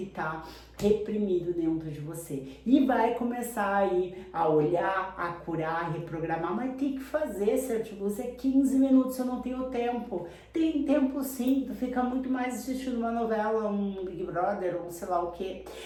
tá reprimido dentro de você. E vai começar aí a olhar, a curar, a reprogramar, mas tem que fazer, certo? Você 15 minutos, eu não tenho tempo. Tem tempo sim, tu fica muito mais assistindo uma novela, um Big Brother, ou sei lá o que.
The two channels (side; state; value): both; identical; correlation 1.00